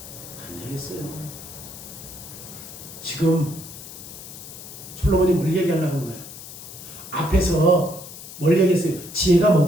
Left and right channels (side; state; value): left; noise; hiss, 14 dB below the sound